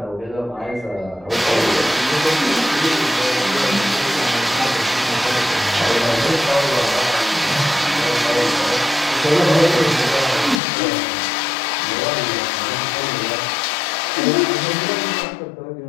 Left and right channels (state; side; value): drops out; right; at 10.6 s